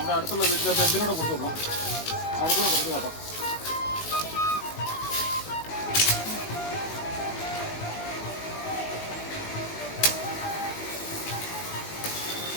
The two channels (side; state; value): right; late; 19 ms